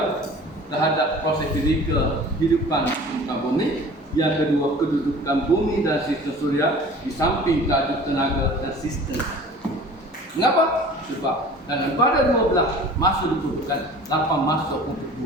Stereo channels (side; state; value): both; normal; correlation 0.44